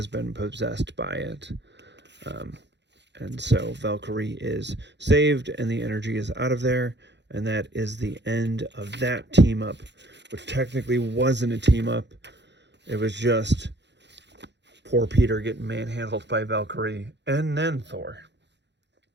been possessed by it. And so Valkyrie is saved, and the energy is out of there. And that is the end of that team up, which technically wasn't a team up. It was just poor Peter getting manhandled by Valkyrie and then Thor.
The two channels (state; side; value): late; left; 0.51 ms